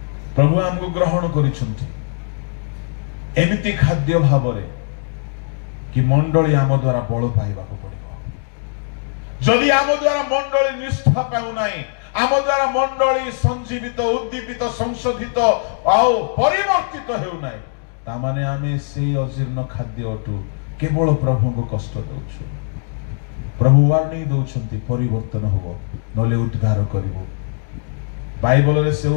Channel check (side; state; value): right; silent; digital silence